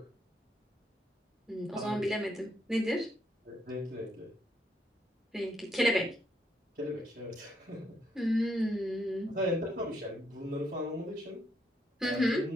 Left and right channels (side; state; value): both; normal; correlation 0.75